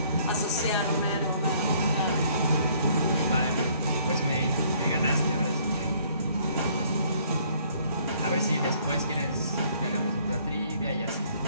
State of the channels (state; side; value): inverted; both; correlation -0.62